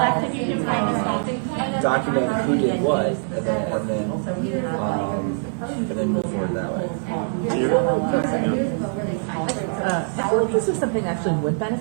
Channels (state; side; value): silent; left; 63 dB below the other